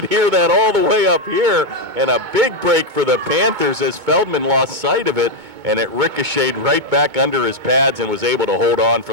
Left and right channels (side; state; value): left; late; 2.2 ms